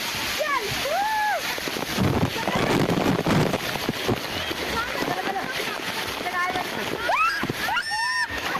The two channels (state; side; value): identical; both; correlation 1.00